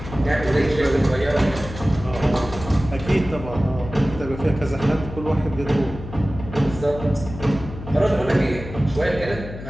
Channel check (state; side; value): noise; left; hum, 11 dB below the sound